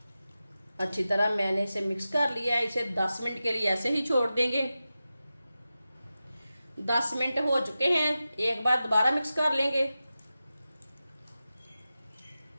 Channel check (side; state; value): both; inverted; correlation -0.93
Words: अच्छी तरह मैंने इसे मिक्स कर लिया है। इसे 10 मिनट के लिए ऐसे ही छोड़ देंगे। 10 मिनट हो चुके हैं। एक बार दोबारा मिक्स कर लेंगे।